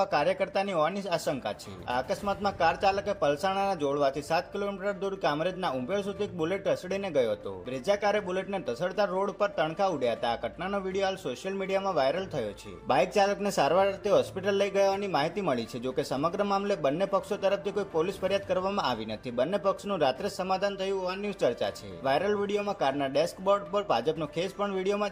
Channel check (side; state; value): both; identical; correlation 1.00